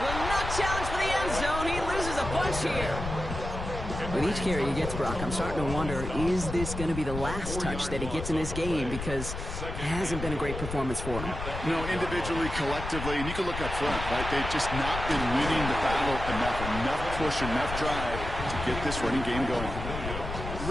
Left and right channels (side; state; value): left; noise; rumble, 6 dB below the sound